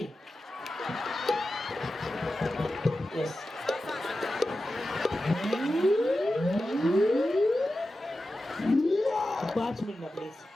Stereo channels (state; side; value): normal; both; correlation 0.93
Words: येस. पाँच मिनट प्लीज